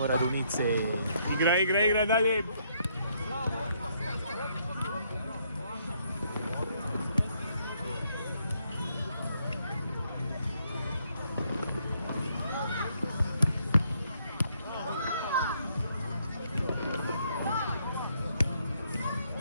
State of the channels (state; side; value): inverted; both; correlation -0.72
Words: Radunice. Igra, dalje.